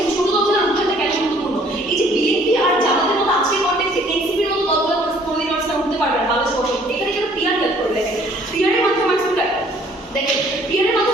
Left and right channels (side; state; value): both; normal; correlation 0.59